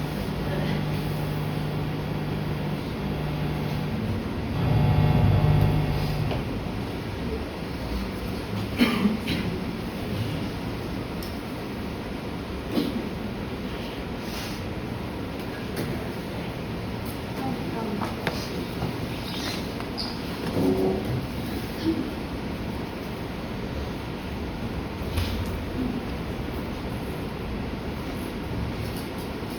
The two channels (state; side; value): identical; both; correlation 1.00